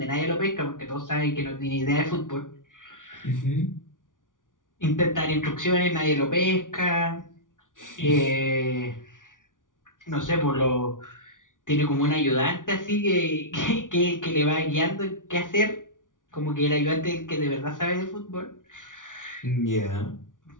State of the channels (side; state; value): right; late; 0.88 ms